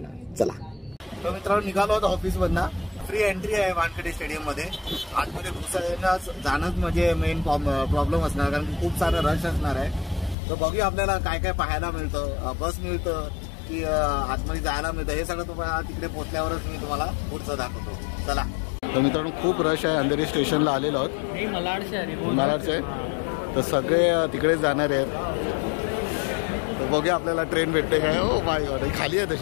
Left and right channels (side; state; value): right; drops out; at 10.4 s